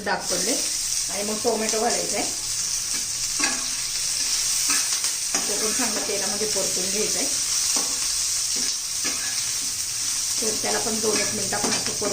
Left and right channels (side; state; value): both; identical; correlation 1.00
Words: पडले आणि मग टोमॅटो घालायचा आहे. तो पण चांगला तेलामध्ये परतून घ्यायचा आहे. तर त्याला पण 2-1 मिनटं आपण असं